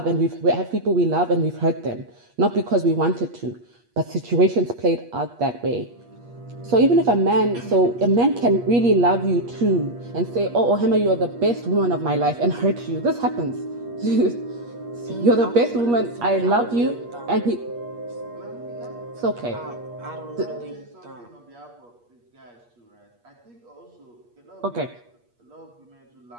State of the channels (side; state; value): left; late; 8.4 ms